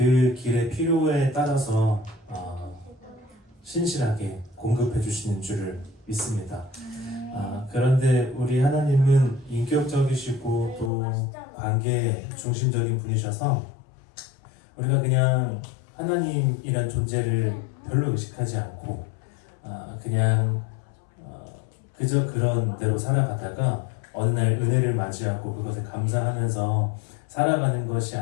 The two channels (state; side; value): drops out; right; at 10.9 s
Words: 길의 필요에 따라서 신실하게 공급해 주시는 줄을 믿습니다. 그런데 우리 하나님은 인격적이시고 또 관계 중심적인 분이셔서 우리가 그냥 하나님이란 존재를 별로 의식하지 않고 그냥 그저 그런 대로 살아가다가 어느 날 은혜를 맞이하고 그것을 감사하면서 살아가는 것이